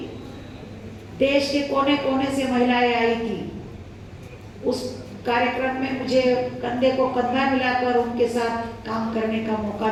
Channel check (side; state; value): both; identical; correlation 1.00